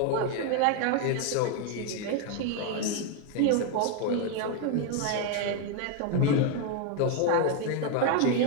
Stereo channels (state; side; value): different; both; correlation 0.01